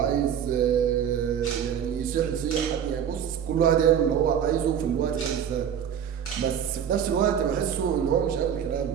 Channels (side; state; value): left; quieter; 8.6 dB